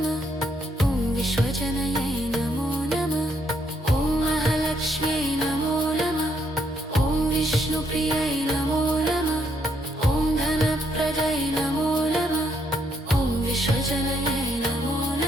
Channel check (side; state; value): both; normal; correlation 0.74